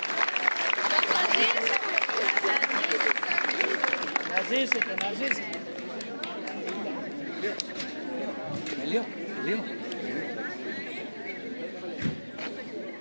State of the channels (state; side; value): inverted; both; correlation -1.00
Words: Να ζήσετε, να ζήσετε. Λίγο.